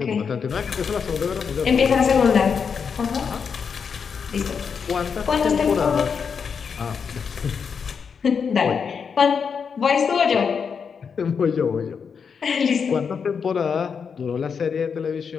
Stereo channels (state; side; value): quieter; right; 6.3 dB